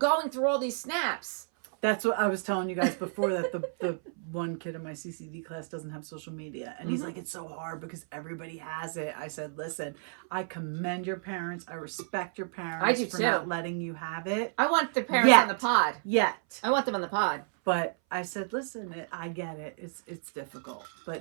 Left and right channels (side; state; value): left; silent; 57 dB below the other